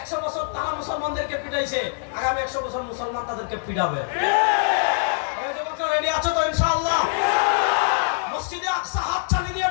বছর তারা মুসলমানদেরকে পিটাইছে, আগামী 100 বছর মুসলমান তাদেরকে পিটাবে। এই যুবকরা রেডি আছো তো ইনশাআল্লাহ? মসজিদে আকসা হাত চালিয়ে নিয়ে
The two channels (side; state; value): right; silent; digital silence